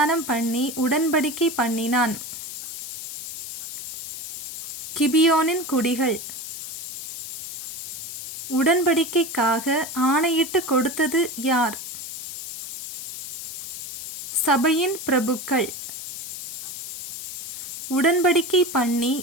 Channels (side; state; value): left; noise; hiss, 8 dB below the sound